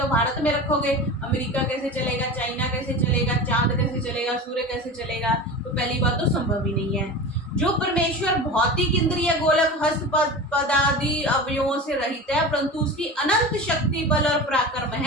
भारत में रखोगे, अमेरिका कैसे चलेगा, चाइना कैसे चलेगा, चांद कैसे चलेगा, सूर्य कैसे चलेगा, तो पहली बात तो संभव ही नहीं है। जो परमेश्वर भौतिक इंद्रिय गोलक हस्त पदादि अवयवों से रहित है, परंतु उसकी अनंत शक्ति, बल और पराक्रम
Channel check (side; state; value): both; normal; correlation 0.31